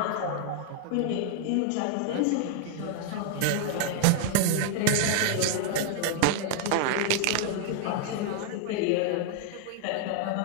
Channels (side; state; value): both; different; correlation 0.00